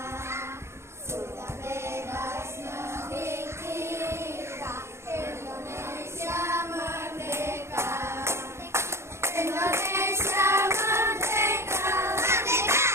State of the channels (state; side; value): late; left; 0.13 ms